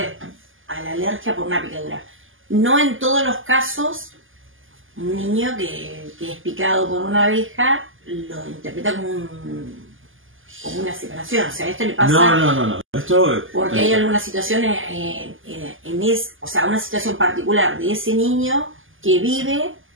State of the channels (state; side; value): late; left; 0.58 ms